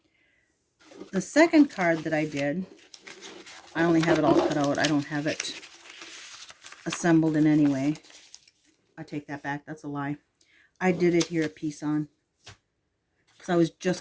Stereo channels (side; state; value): both; identical; correlation 1.00